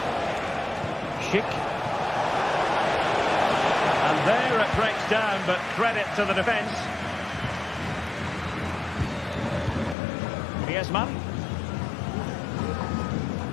Schick. And there it breaks down, but credit to the defence. Griezmann.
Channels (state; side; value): drops out; right; at 10.0 s